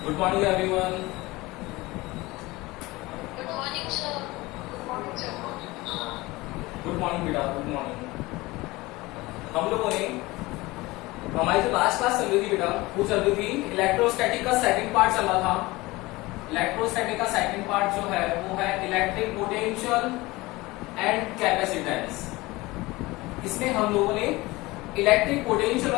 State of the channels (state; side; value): quieter; right; 21.0 dB